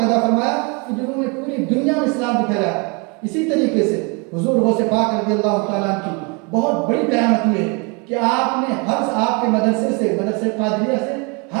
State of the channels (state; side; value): quieter; left; 31.9 dB